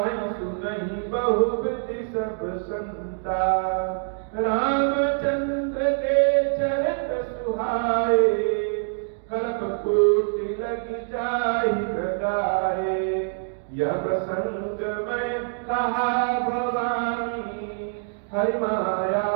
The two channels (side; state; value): left; silent; digital silence